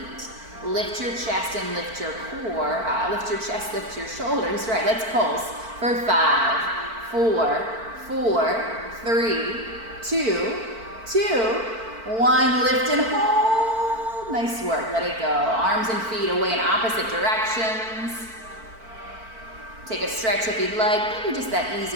Lift your chest and lift your core. Lift your chest, lift your shoulders. Right, let's pulse for 5, 4, 4, 3, 2, 2, 1. Lift and hold. Nice work. Let it go. Arms and feet away in opposite directions. Take a stretch if you'd like. Maybe just that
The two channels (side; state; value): left; late; 4.5 ms